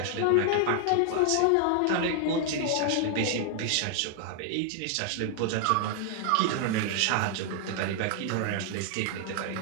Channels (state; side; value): different; both; correlation 0.00